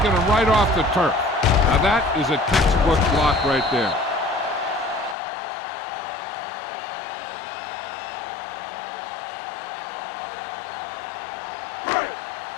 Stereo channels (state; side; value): drops out; right; at 5.2 s